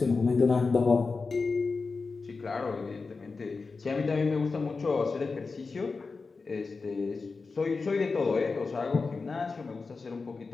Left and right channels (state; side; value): quieter; right; 4.3 dB